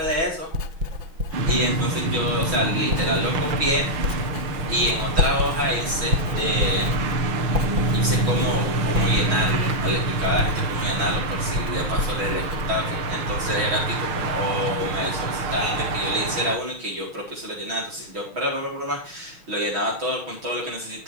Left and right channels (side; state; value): left; late; 6.2 ms